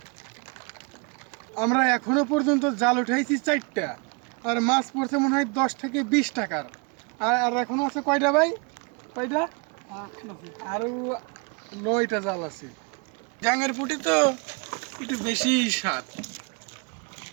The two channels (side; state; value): left; quieter; 33.0 dB